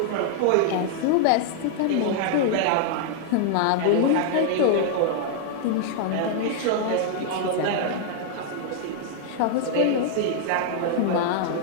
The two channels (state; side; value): different; both; correlation -0.01